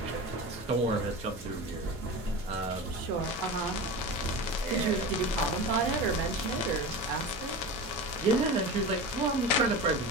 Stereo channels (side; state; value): both; normal; correlation 0.28